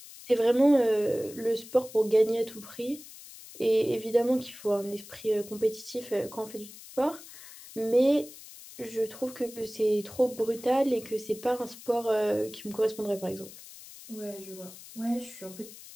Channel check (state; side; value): noise; left; hiss, 17 dB below the sound